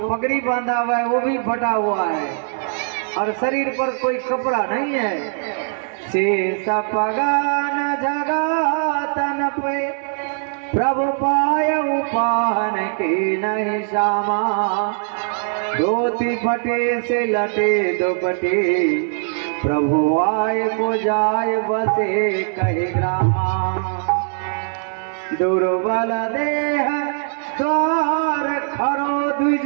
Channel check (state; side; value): silent; left; digital silence